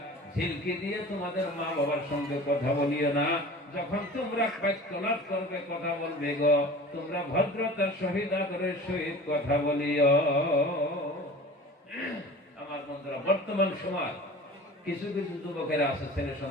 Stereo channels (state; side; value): normal; both; correlation 0.40